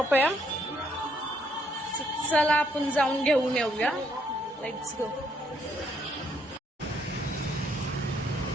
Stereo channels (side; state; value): both; normal; correlation 0.71